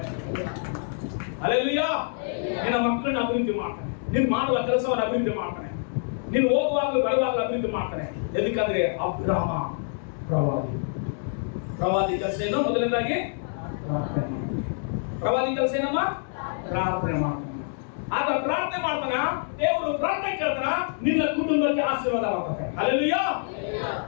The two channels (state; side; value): silent; right; digital silence